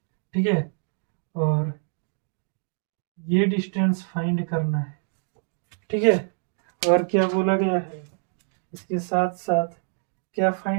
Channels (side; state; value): left; silent; digital silence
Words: ठीक है, और ये डिस्टेंस फाइंड करना है। ठीक है, और क्या बोला गया है, इसके साथ साथ क्या